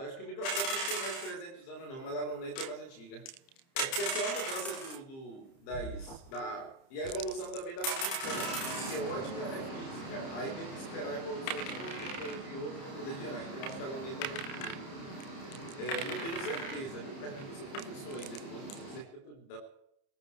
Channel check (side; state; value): right; late; 30 ms